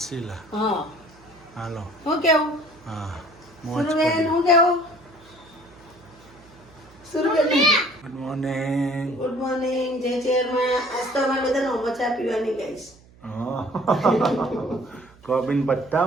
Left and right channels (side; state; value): right; noise; hum, 26 dB below the sound